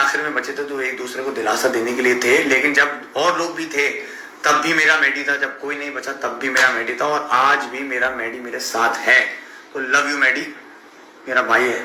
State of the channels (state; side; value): identical; both; correlation 1.00